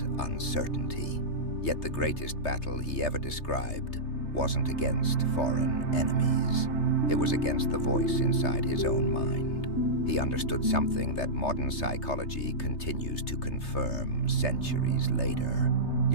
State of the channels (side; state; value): right; late; 3.3 ms